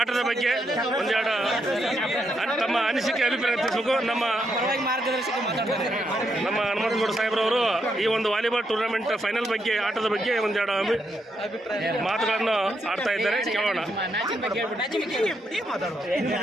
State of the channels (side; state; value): both; normal; correlation 0.79